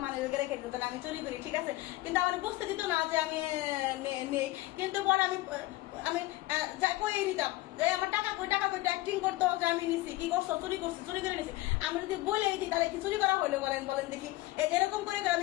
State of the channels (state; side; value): quieter; right; 18.2 dB